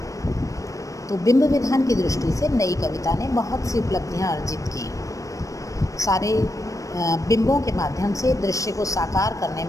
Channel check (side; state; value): right; late; 0.16 ms